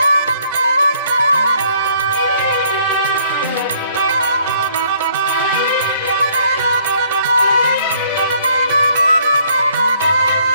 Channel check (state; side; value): inverted; both; correlation -0.64